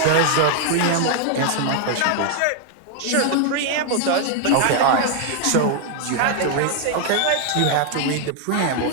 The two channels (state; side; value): different; both; correlation 0.00